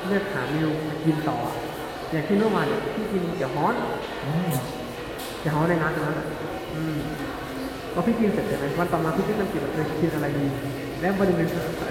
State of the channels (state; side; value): identical; both; correlation 1.00